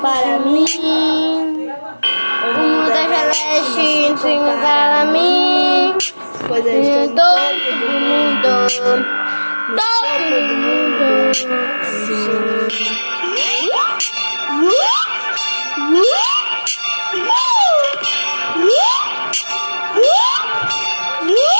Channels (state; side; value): inverted; both; correlation -1.00